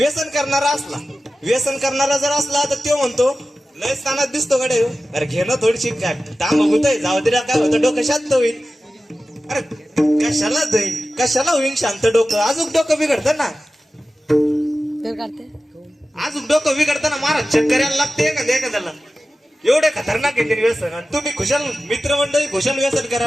करणारा जर असला तर तो म्हणतो लय तानात दिसतो कडे, अरे घेणं थोडीशी काय तांब होतंय, जाऊ दे काय होतं, डोकं शांत होईल. अरे कशाला होईल शांत डोकं, अजून डोकं बिघडतं ना, अजून डोकं बिघडतं ना, महाराज चक्कर यायला लागते एखाद्याला. एवढे खतरनाक आहे ते व्यसन. आणि तुम्ही खुशाल मित्रमंडळी खुशाल व्यसन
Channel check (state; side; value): normal; both; correlation 0.95